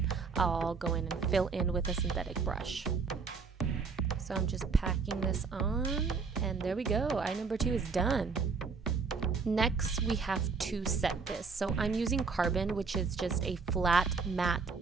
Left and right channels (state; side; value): quieter; left; 4.9 dB